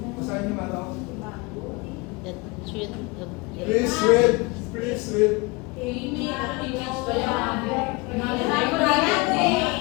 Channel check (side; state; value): right; quieter; 26.0 dB